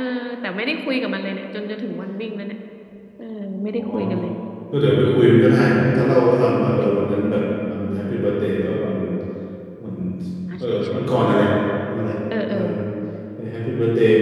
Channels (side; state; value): both; identical; correlation 1.00